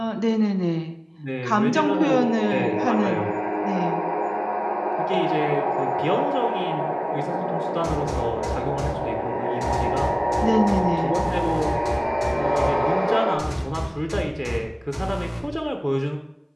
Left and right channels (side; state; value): both; identical; correlation 1.00